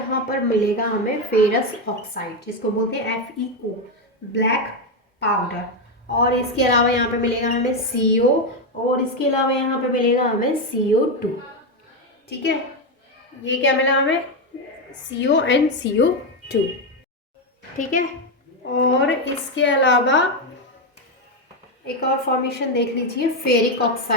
पर मिलेगा हमें फेरस ऑक्साइड, जिसको बोलते हैं FeO, ब्लैक पाउडर। और इसके अलावा यहाँ पे मिलेगा हमें CO, और इसके अलावा यहाँ पे मिलेगा हमें CO2। ठीक है, ये क्या मिला हमें, CO and CO2। ठीक है, और इसके अलावा एक और फॉर्मेशन देख लीजिए फेरिक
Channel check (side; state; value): both; normal; correlation 0.07